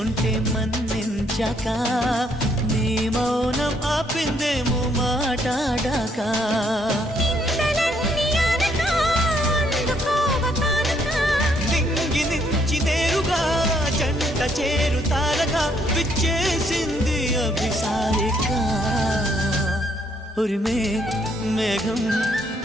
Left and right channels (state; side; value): normal; both; correlation 0.70